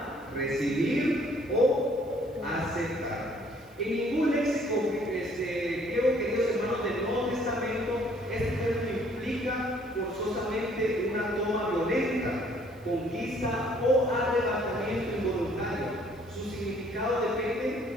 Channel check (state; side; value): noise; right; hiss, 30 dB below the sound